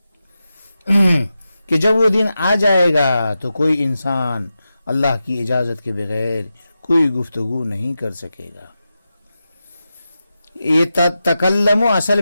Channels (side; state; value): both; inverted; correlation -0.91